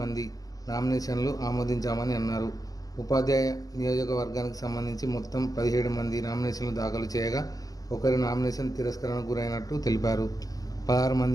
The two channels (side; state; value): right; late; 0.17 ms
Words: నామినేషన్లు ఆమోదించామని అన్నారు. ఉపాధ్యాయ నియోజకవర్గానికి సంబంధించి మొత్తం 17 మంది నామినేషన్లు దాఖలు చేయగా ఒకరి నామినేషన్ తిరస్కరణకు గురైనట్టు తెలిపారు. 16